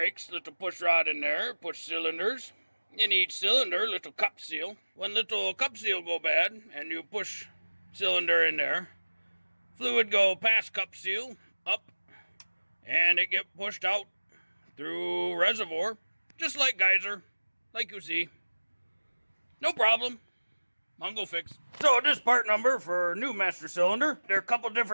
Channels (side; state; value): both; inverted; correlation -1.00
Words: little push rod in there, push cylinders. In each cylinder, little cup seal. When little cup seal go bad, and you push cylinder in there, fluid go past cup seal, up, and it get pushed out through reservoir, just like geyser, like you see. No problem. Mongo Fix. So this part number for new master cylinder. There are a couple